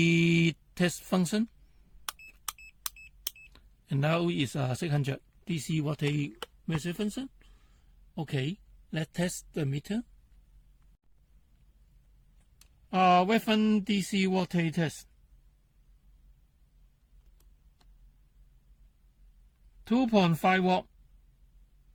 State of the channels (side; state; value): both; identical; correlation 1.00